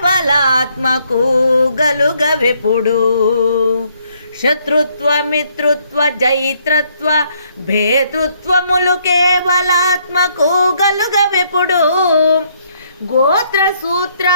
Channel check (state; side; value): inverted; both; correlation -0.69